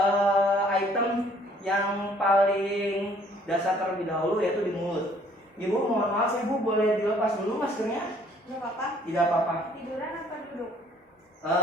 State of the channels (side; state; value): both; normal; correlation 0.59